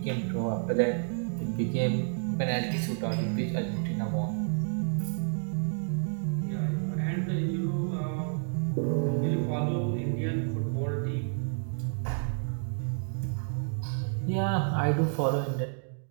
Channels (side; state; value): left; silent; 58 dB below the other